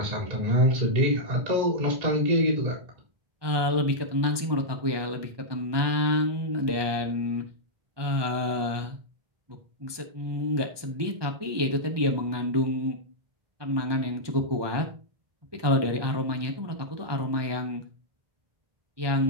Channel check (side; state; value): left; late; 1.2 ms